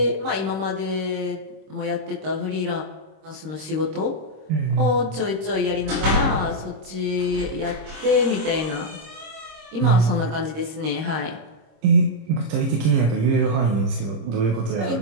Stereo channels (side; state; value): left; late; 26 ms